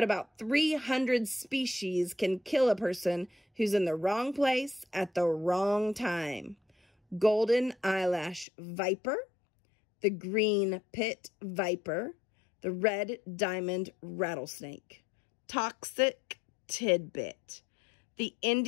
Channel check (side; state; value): right; drops out; at 8.5 s